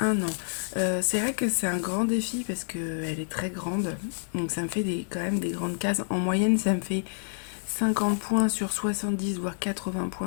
un an. C'est vrai que c'est un grand défi parce qu'elle est très grande. Donc ça me fait quand même des grandes cases. En moyenne, ça me fait 50 points sur 70, voire 80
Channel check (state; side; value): silent; right; digital silence